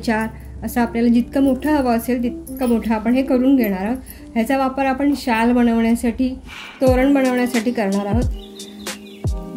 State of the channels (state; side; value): identical; both; correlation 1.00